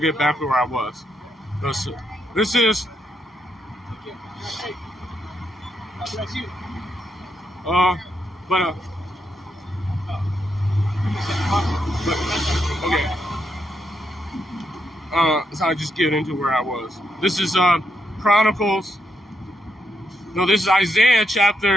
back to where I was. This is. Okay. So I just get into where I was. This is Chronicles. No, this is Isaiah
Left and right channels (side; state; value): both; normal; correlation 0.80